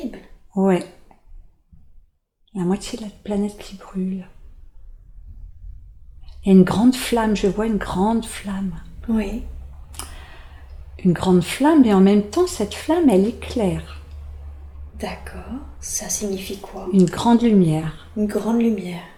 Ouais. La moitié de la planète qui brûle. Il y a une grande flamme, je vois une grande flamme. Oui. Une grande flamme, et en même temps, cette flamme, elle éclaire. D'accord. Ça signifie quoi? Une grande lumière. Une grande lumière.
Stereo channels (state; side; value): identical; both; correlation 1.00